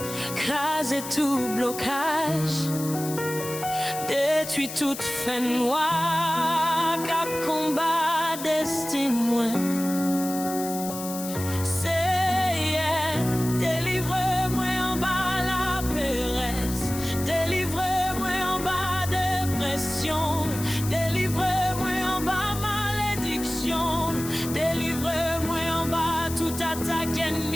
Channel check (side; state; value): left; noise; hiss, 9 dB below the sound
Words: craser tout blocage, détruire toute fin noire, cap combat destin moi. C'est délivre-moi en bas la péresse, délivre-moi en bas dépression, délivre-moi en bas malédiction, délivre-moi en bas tout attaque